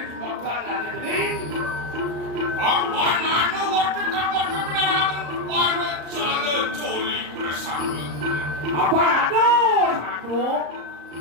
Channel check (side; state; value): left; late; 34 ms